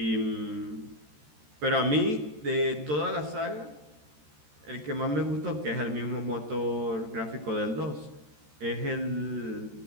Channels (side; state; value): left; late; 13 ms